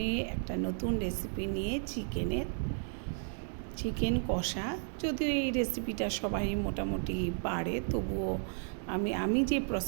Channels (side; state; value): left; silent; 55 dB below the other